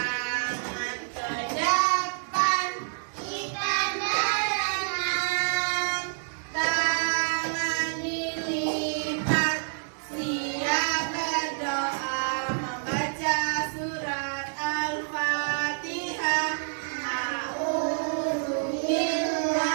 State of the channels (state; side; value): silent; left; digital silence